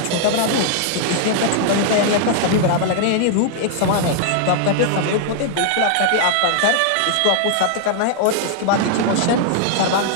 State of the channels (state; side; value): different; both; correlation -0.01